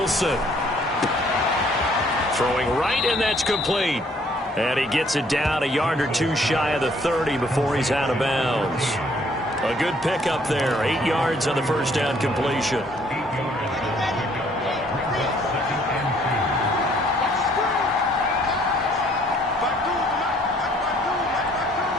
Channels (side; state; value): both; normal; correlation 0.62